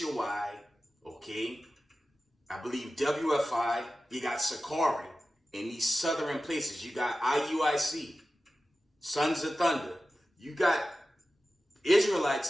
okay? I believe WFI, you got Sakari. In these southern places, you got IUIC, Sons of Thunder. You got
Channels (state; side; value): normal; both; correlation 0.94